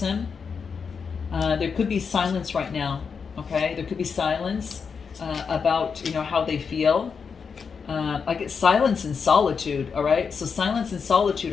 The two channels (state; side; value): quieter; right; 5.9 dB